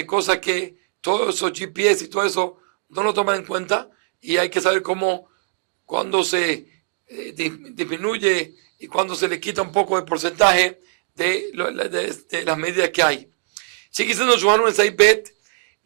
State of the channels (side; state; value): left; silent; digital silence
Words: cosas que todos esos GPS y todo eso no lo toman en cuenta, y hay que saber cuándo se disminuye y cuando se le quita un poco de porcentaje de las medidas que hay. Sigue diciendo Johannu en Saibet,